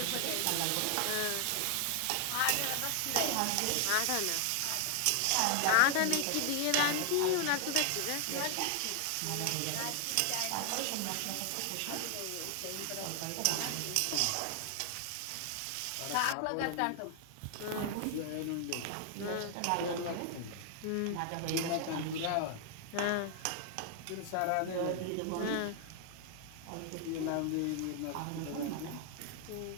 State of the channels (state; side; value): different; both; correlation 0.00